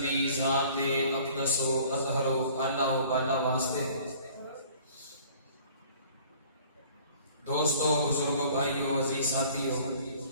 دی ذات اقدس و اطہر و اعلیٰ و بالا واسطے. دوستو، بزرگوں، بھائیوں، عزیز ساتھیوں،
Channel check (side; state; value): both; inverted; correlation -0.52